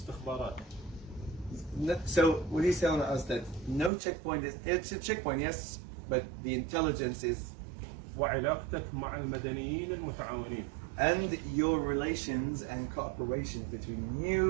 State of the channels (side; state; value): left; drops out; at 3.9 s